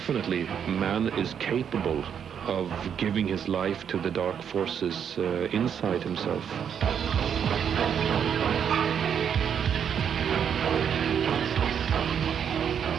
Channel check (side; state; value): left; quieter; 8.1 dB